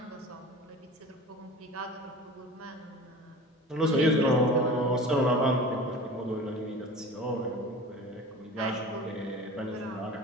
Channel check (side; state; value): both; normal; correlation 0.37